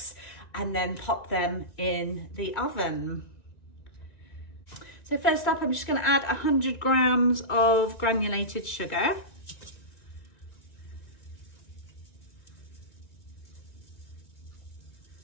and then pop them in the oven. So first up, I'm just going to add 100 grams of granulated sugar.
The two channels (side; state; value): right; late; 2.3 ms